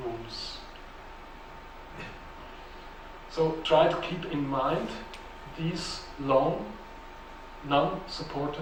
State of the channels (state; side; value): identical; both; correlation 1.00